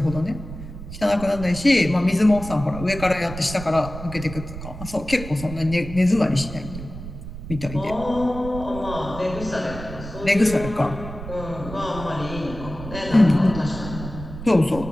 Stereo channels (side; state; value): right; noise; rumble, 11 dB below the sound